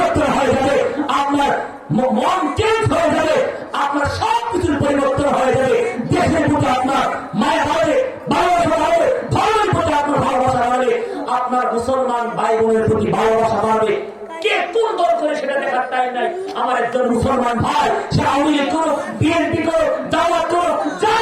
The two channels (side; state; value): both; identical; correlation 1.00